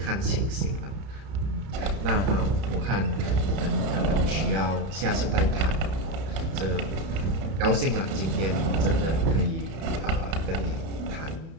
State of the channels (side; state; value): left; late; 31 ms